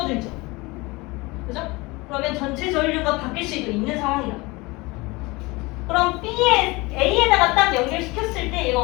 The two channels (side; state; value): right; quieter; 23.7 dB